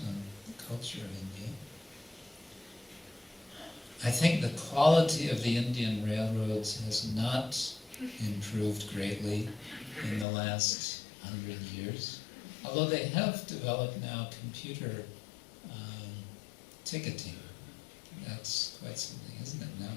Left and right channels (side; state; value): right; drops out; at 10.2 s